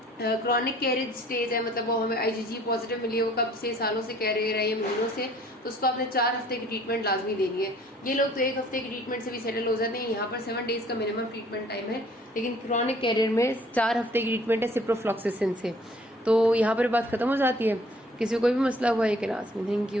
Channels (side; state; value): both; normal; correlation 0.56